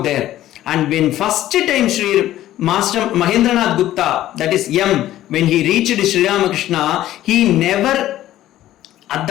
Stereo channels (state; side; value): quieter; right; 13.7 dB